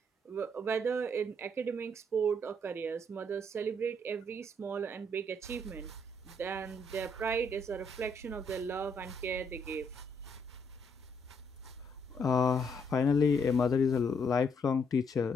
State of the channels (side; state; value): both; normal; correlation 0.72